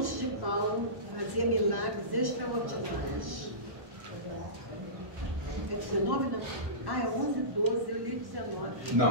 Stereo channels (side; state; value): left; late; 1.1 ms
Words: de Paulo, fazia milagres extraordinários. É 19, não? Ah, é 11, 12, eu li 19. Não,